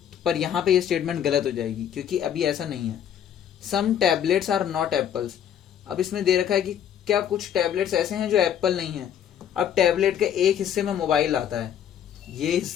पर यहाँ पे ये स्टेटमेंट गलत हो जाएगी क्योंकि अभी ऐसा नहीं है। Some tablets are not apples. अब इसमें दे रखा है कि क्या कुछ टैबलेट्स ऐसे हैं जो एप्पल नहीं है। अब टैबलेट के एक हिस्से में मोबाइल आता है, ये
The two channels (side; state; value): right; quieter; 9.4 dB